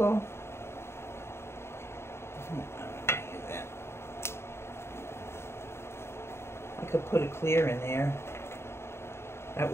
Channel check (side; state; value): right; late; 0.12 ms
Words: I could put a clear in there. That